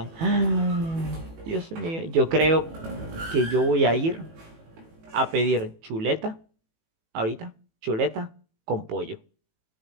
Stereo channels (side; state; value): left; late; 18 ms